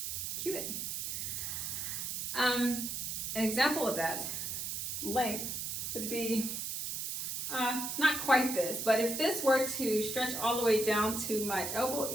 Cubit. An example of that length would be not quite this, but if this were to stretch all the way down to my elbow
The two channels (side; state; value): right; noise; hiss, 3 dB below the sound